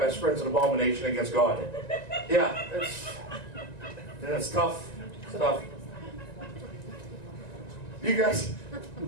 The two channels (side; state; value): right; late; 1.9 ms